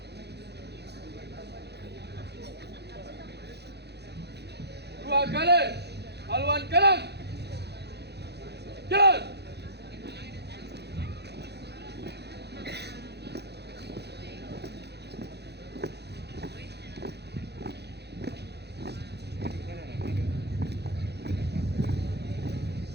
Dua kali haluan kanan. Jalan.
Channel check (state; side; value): late; left; 0.48 ms